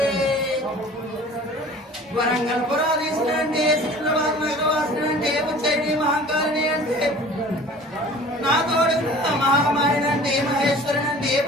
వరంగల్ పురాధీశుని అంటే, సికింద్రాబాద్ నగరవాసిని అంటే, ఉజ్జయిని మహంకాళిని అంటే, నా తోడు మహామాయని అంటే, మహేశ్వరుని అంటే,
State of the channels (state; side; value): normal; both; correlation 0.45